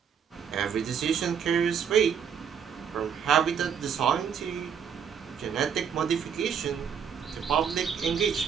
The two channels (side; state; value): left; quieter; 7.5 dB